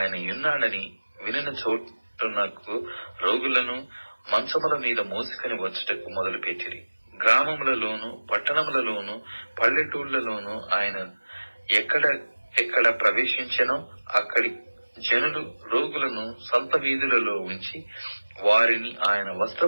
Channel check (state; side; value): inverted; both; correlation -1.00